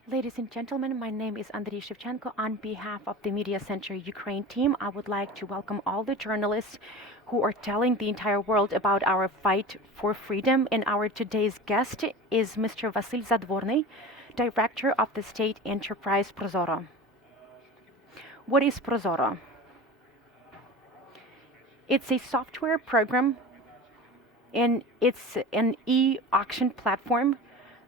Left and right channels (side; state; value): both; normal; correlation 0.33